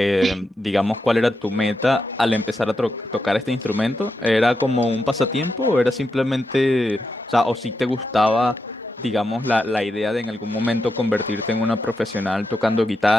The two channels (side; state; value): both; normal; correlation 0.86